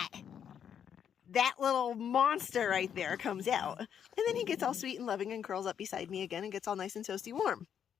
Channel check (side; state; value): right; quieter; 8.5 dB